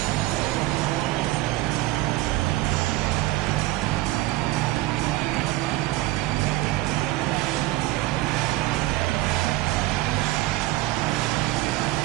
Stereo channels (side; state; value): left; quieter; 17.9 dB